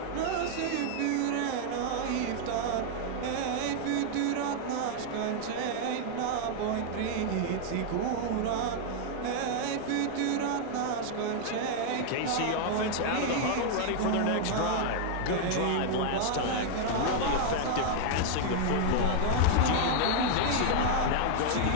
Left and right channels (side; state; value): both; different; correlation 0.00